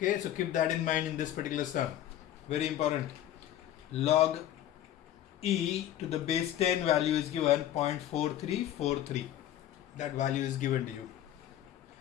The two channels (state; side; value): quieter; right; 12.0 dB